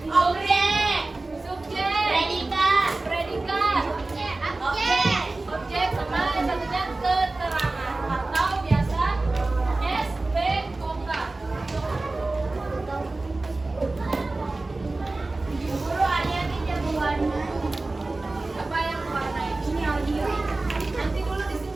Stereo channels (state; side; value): quieter; left; 3.2 dB